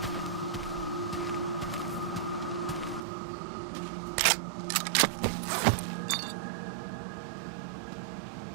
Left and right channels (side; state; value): left; drops out; at 3.0 s